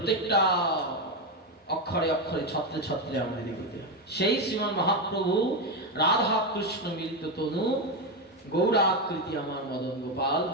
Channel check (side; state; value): both; normal; correlation 0.10